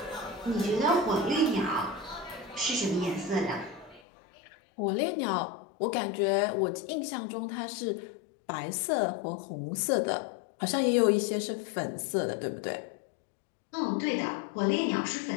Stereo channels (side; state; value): right; drops out; at 4.0 s